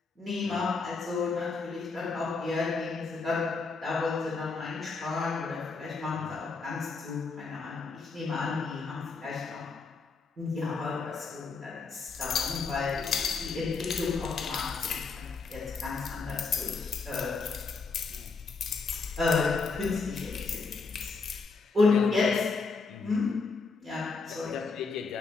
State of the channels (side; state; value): right; quieter; 4.4 dB